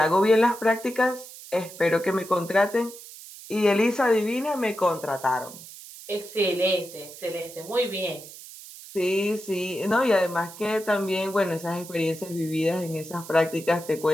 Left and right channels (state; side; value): noise; right; hiss, 16 dB below the sound